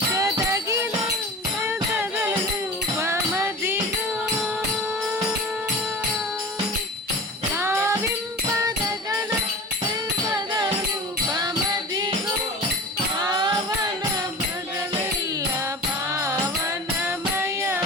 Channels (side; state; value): both; normal; correlation 0.35